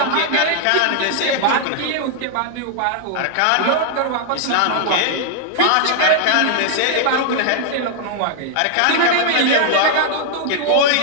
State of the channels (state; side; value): different; both; correlation 0.00